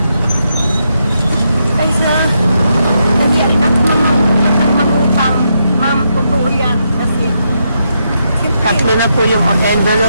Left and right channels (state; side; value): inverted; both; correlation -0.81